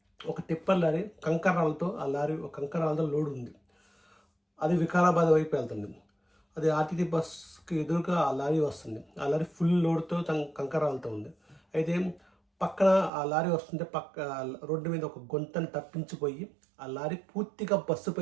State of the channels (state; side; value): drops out; left; at 13.1 s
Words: ఒక టిప్పర్ లారీ కంకరాలతో కంకరాలతో లోడ్ ఉంది. అది వికారాబాద్ వైపు వెళ్తుంది. అది ఆర్టీసీ బస్కి ఎదురుగా ఆ లారీ వస్తుంది. ఆ లారీ ఫుల్ లోడ్తో కంకరాలతో ఉంది. అయితే పక్కన ఆ లారీ వస్తుంటే రోడ్డు మీద ఒక గుంతను తప్పించిపోయి ఆ లారీ పూర్తిగా